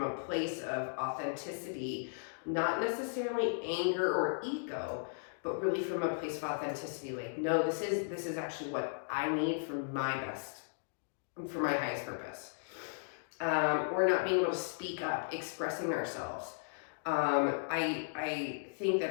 a place of authenticity, not necessarily anger or ego, but really from a place of authenticity. Like, no, this is actually what I need for my best, for my highest purpose. Or not being able to speak up, expressing ourselves. I think that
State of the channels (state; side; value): silent; right; digital silence